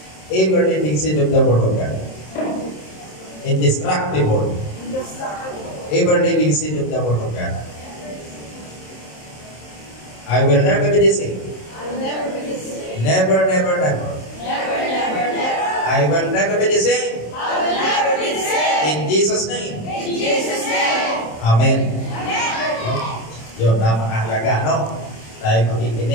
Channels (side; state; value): right; late; 27 ms